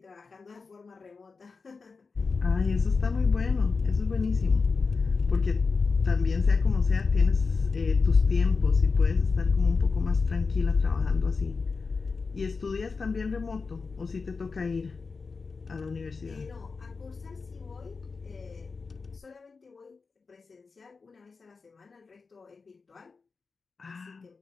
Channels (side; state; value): right; quieter; 4.6 dB